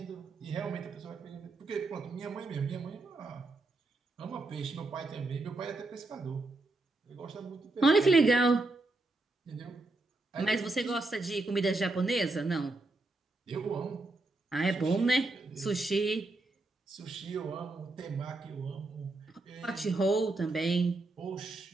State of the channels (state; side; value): quieter; left; 3.1 dB